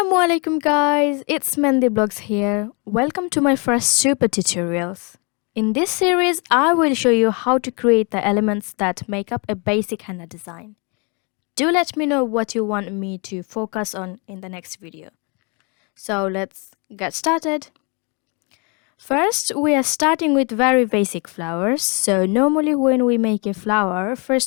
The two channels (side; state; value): right; quieter; 33.2 dB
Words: alaikum guys, it's Mehndi Blogs here. Welcome to my first super tutorials. In this series, I will show you how to create the elements that make up a basic henna design. Do let me know what you want me to focus on in the next video. So let's get started. First, we are starting with very basic flowers. So normally when we make a flower,